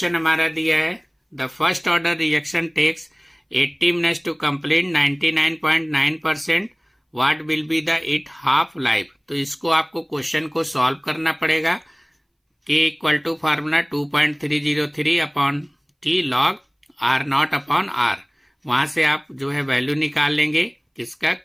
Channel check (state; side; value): identical; both; correlation 1.00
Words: हमारा दिया है, the first order reaction takes 80 minutes to complete 99.9%, what will be the it half life. तो इसको आपको क्वेश्चन को सॉल्व करना पड़ेगा। K = formula 2.303/T log R0 upon R। वहां से आप जो है वैल्यू निकाल लेंगे, किसका,